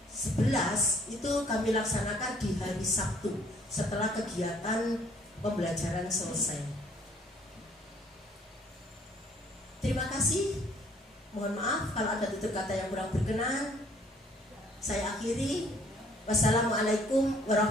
11 itu kami laksanakan di hari Sabtu setelah kegiatan pembelajaran selesai. Terima kasih. Mohon maaf kalau ada tutur kata yang kurang berkenan. Saya akhiri. Wassalamualaikum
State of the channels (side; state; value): both; normal; correlation 0.61